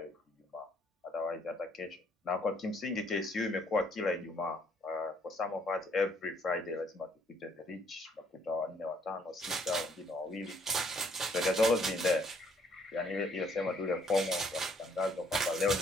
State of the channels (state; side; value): normal; both; correlation 0.65